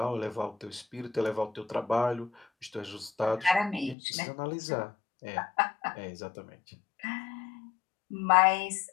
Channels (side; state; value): right; drops out; at 4.0 s